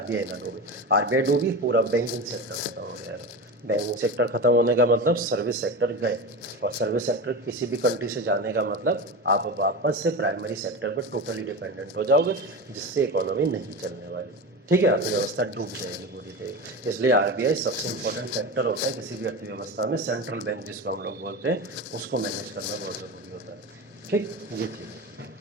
ना डूबे। आरबीआई डूबी, पूरा बैंकिंग सेक्टर खत्म हो गया। बैंकिंग सेक्टर खत्म होने का मतलब सर्विस सेक्टर गए, और सर्विस सेक्टर किसी भी कंट्री से जाने का मतलब आप वापस से प्राइमरी सेक्टर पर टोटली डिपेंडेंट हो जाओगे, जिससे इकोनॉमी नहीं चलने वाली। ठीक है, अर्थव्यवस्था डूब जाएगी पूरी तरह। इसलिए आरबीआई सबसे इंपॉर्टेंट फैक्टर होता है किसी भी अर्थव्यवस्था में, सेंट्रल बैंक जिसको हम लोग बोलते हैं, उसको मैनेज करना बहुत ज़रूरी होता है। ठीक, ये चीज़ है।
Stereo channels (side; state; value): both; normal; correlation 0.25